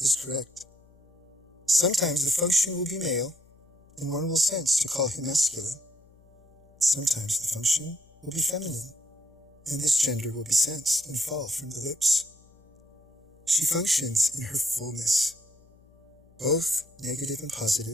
correct. Sometimes the function will be male, and one will sense to call him masculine. Sometimes the function will be feminine, and this gender will be sensed and fall from the lips. She functions in her fullness. Both negative and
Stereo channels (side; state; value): left; noise; hum, 28 dB below the sound